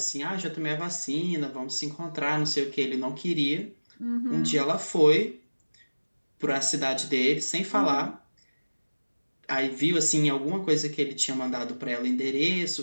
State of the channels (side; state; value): both; inverted; correlation -1.00